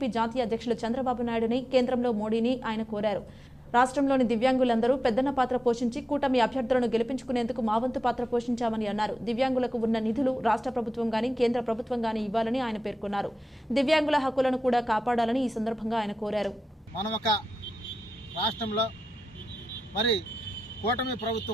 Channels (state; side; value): normal; both; correlation 0.92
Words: జాతీయ అధ్యక్షులు చంద్రబాబు నాయుడుని, కేంద్రంలో మోడీని ఆయన కోరారు. రాష్ట్రంలోని దివ్యాంగులందరూ పెద్దన్న పాత్ర పోషించి కూటమి అభ్యర్థులను గెలిపించుకునేందుకు మా వంతు పాత్ర పోషించామని అన్నారు. దివ్యాంగులకు ఉన్న నిధులు రాష్ట్ర ప్రభుత్వం గానీ కేంద్ర ప్రభుత్వం గానీ ఇవ్వాలని ఆయన పేర్కొన్నారు. దివ్యాంగుల హక్కులను కూడా కాపాడాలని ఈ సందర్భంగా ఆయన కోరారు. మనం ఒక రాష్ట్రంలో మరి కూటమి